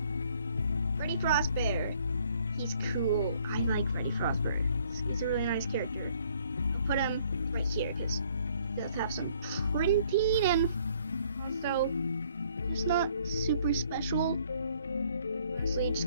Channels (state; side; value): inverted; both; correlation -0.62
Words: Freddy Frostbear. He's cool. I like Freddy Frostbear. He's a really nice character. I'll put him right here because he does have some printing and also it's not super special. Honestly, it just